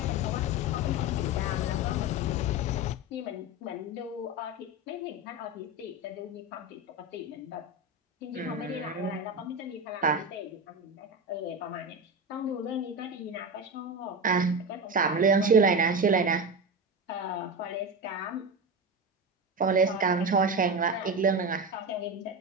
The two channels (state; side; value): normal; both; correlation 0.21